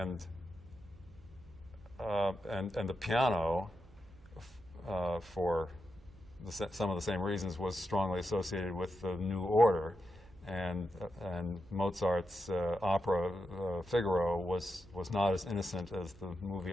the piano, for some of the same reasons, was strongly associated with the New Order, and Mozart's opera Figaro was not as innocent as the movie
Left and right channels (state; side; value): noise; right; hum, 25 dB below the sound